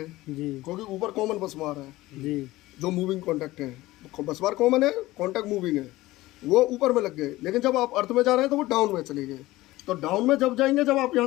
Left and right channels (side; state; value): right; quieter; 18.0 dB